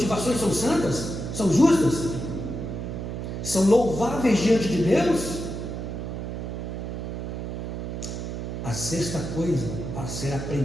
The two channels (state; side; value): noise; right; hum, 5 dB below the sound